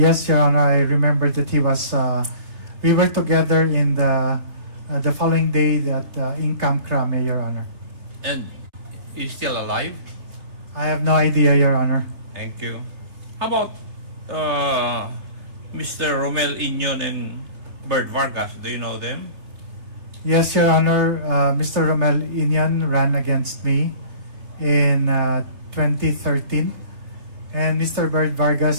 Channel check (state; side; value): late; left; 3.2 ms